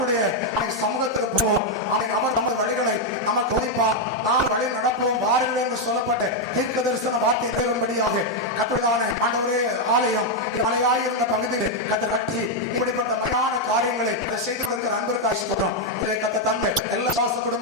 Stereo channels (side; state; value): both; normal; correlation 0.00